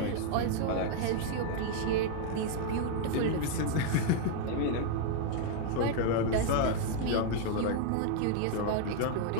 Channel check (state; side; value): different; both; correlation 0.00